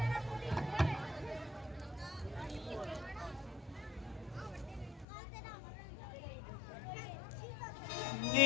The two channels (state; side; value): drops out; right; at 5.1 s